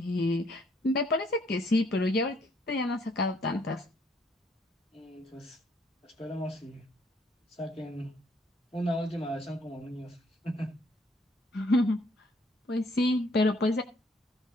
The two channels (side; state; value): both; normal; correlation 0.66